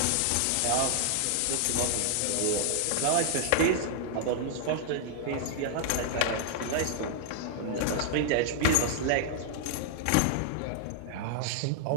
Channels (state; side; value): different; both; correlation -0.01